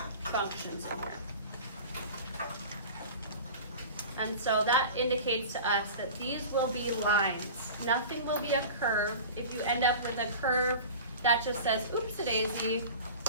functions in here. And so that indicates to us that these will be lines. Nothing will be a curve. If you end up with a curve that just says, oops-a-daisy,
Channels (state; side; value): inverted; both; correlation -0.36